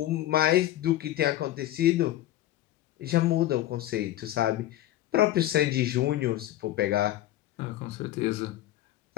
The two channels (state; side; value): quieter; right; 14.2 dB